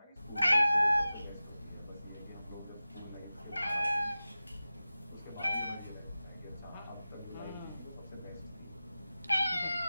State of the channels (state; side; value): inverted; both; correlation -0.95